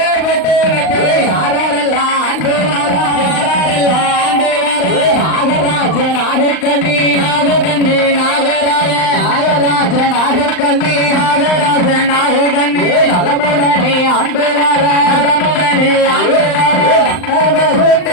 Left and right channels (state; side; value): late; right; 39 ms